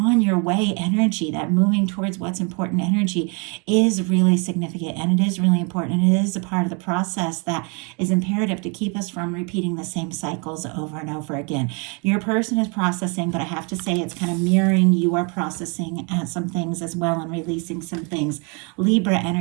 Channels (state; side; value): quieter; left; 33.9 dB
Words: your way energy, that moving towards what's important energy, is really significant, and it is really important, and it is a part of the process that is imperative to keep us from repeating the same cycles over and over again. Your person is processing, but I have to say it's kind of mirroring you are processing some things as well and releasing some things. Libra